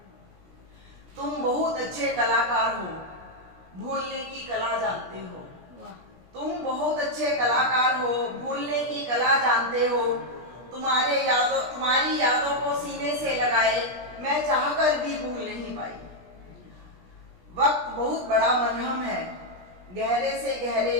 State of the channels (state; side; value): late; left; 17 ms